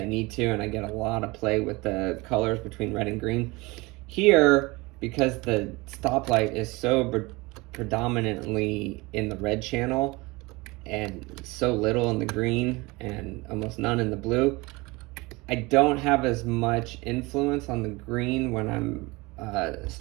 need to, and I get a lot of play with the colors between red and green. Here, because the stoplight is so predominantly in the red channel and so little in the green and almost none in the blue, I don't have as much influence on the green when I'm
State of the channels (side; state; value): left; quieter; 23.8 dB